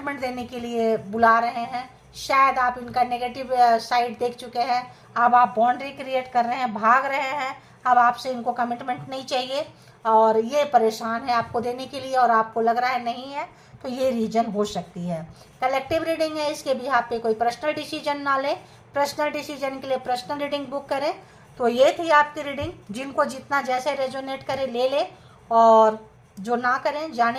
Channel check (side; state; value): both; identical; correlation 1.00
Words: देने के लिए बुला रहे हैं। शायद आप इनका नेगेटिव साइड देख चुके हैं, अब आप बाउंड्री क्रिएट कर रहे हैं, भाग रहे हैं, अब आपसे इनको कमिटमेंट नहीं चाहिए और ये परेशान है आपको देने के लिए, और आपको लग रहा है नहीं है, तो ये रीजन हो सकती है। कलेक्टिव रीडिंग है, इसके भी आप पे कोई पर्सनल डिसीजन ना लें, पर्सनल डिसीजन के लिए पर्सनल रीडिंग बुक करें। तो ये थी आपकी रीडिंग, जिनको जितना जैसे रेजोनेट करे ले ले, और जो ना करें